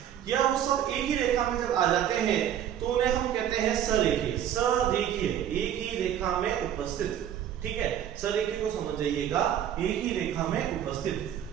या वो सब एक ही रेखा में जब आ जाते हैं तो उन्हें हम कहते हैं सरेखीय। सरेखीय एक ही रेखा में उपस्थित, ठीक है। सरेखीय को समझ जाइएगा, एक ही रेखा में उपस्थित।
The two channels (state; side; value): quieter; left; 10.2 dB